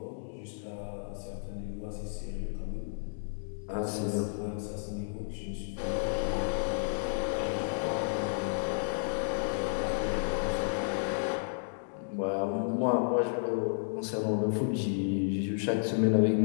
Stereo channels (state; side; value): silent; right; digital silence